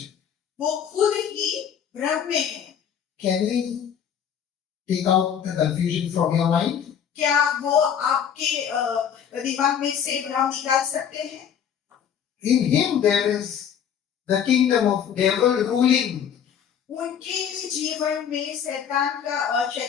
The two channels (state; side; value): quieter; right; 8.4 dB